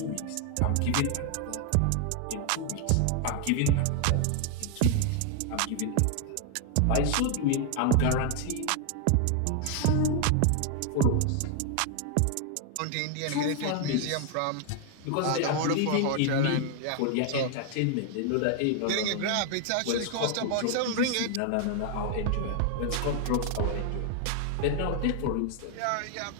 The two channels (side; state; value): both; different; correlation 0.00